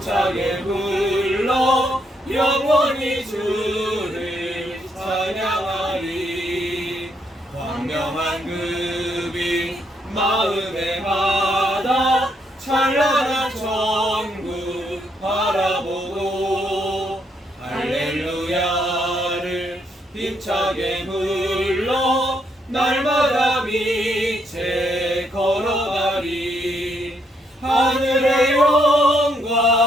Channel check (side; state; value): both; normal; correlation 0.75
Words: 불러 영원히 주를 찬양하리. 광명한 그 빛 마음에 받아 찬란한 천국 바라보고 할렐루야를 힘차게 불러 날마다 빛에 걸어가리. 하늘의